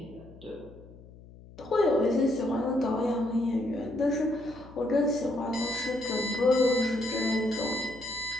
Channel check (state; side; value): noise; left; hum, 20 dB below the sound